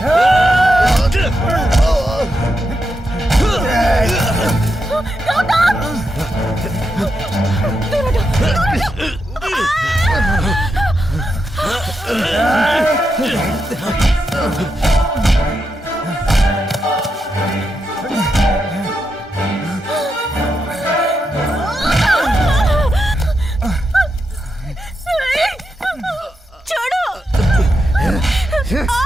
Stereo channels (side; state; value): both; normal; correlation 0.85